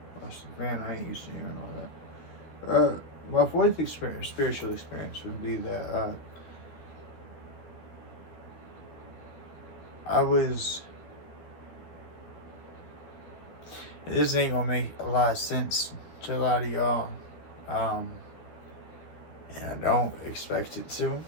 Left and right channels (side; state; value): right; late; 13 ms